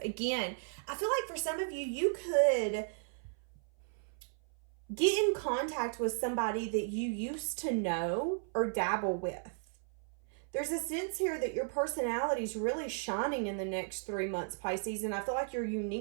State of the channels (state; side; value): silent; left; 54 dB below the other